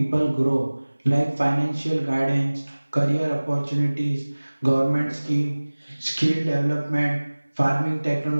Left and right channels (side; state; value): both; inverted; correlation -1.00